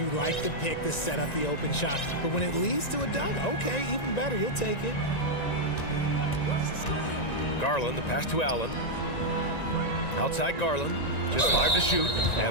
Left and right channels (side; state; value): right; late; 1.9 ms